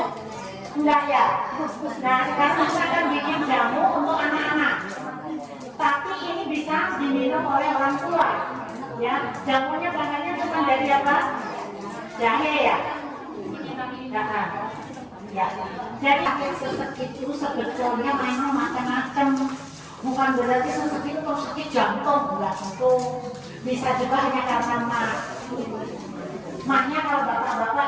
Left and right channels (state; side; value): identical; both; correlation 1.00